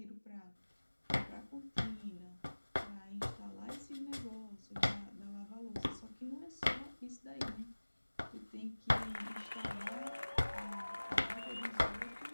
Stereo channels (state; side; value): inverted; both; correlation -1.00